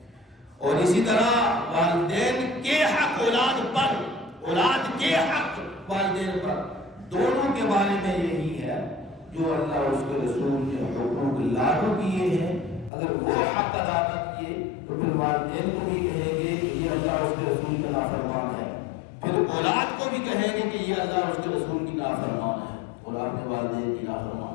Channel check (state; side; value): drops out; right; at 12.9 s